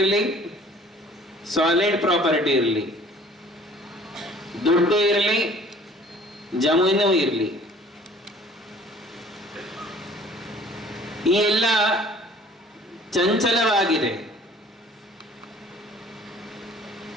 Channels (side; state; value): both; normal; correlation 0.52